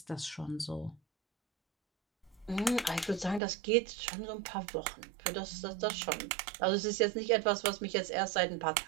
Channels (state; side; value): drops out; left; at 3.4 s